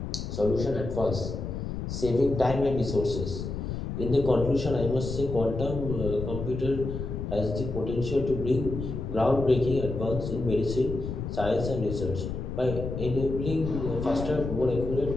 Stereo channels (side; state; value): left; noise; rumble, 5 dB below the sound